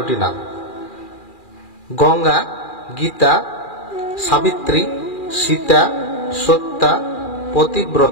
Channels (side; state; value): right; late; 2.4 ms